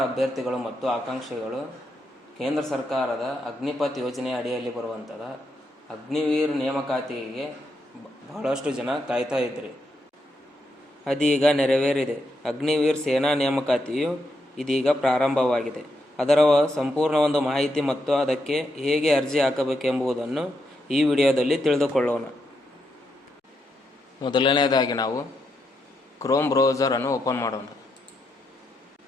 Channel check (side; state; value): both; normal; correlation 0.82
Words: ಅಭ್ಯರ್ಥಿಗಳು ಮತ್ತು ಆಕಾಂಕ್ಷಿಗಳು ಕೇಂದ್ರ ಸರ್ಕಾರದ ಅಗ್ನಿಪಥ್ ಯೋಜನೆ ಅಡಿಯಲ್ಲಿ ಬರುವಂಥದ ಅಗ್ನಿವೀರ್ ನೇಮಕಾತಿಗೆ ಬಹಳಷ್ಟು ಜನ ಕಾಯ್ತಾ ಇದ್ರಿ. ಅದೀಗ ನೆರವೇರಿದೆ. ಅಗ್ನಿವೀರ್ ಸೇನಾ ನೇಮಕಾತಿಯು ಇದೀಗ ಪ್ರಾರಂಭವಾಗಿದೆ. ಅದರ ಸಂಪೂರ್ಣ ಒಂದು ಮಾಹಿತಿ ಮತ್ತು ಅದಕ್ಕೆ ಹೇಗೆ ಅರ್ಜಿ ಹಾಕಬೇಕೆಂಬುದನ್ನು ಈ ವಿಡಿಯೋದಲ್ಲಿ ತಿಳಿದುಕೊಳ್ಳೋಣ. ಮೊದಲನೇದಾಗಿ ನಾವು ಕ್ರೋಮ್ ಬ್ರೌಸರನ್ನು ಓಪನ್ ಮಾಡೋಣ.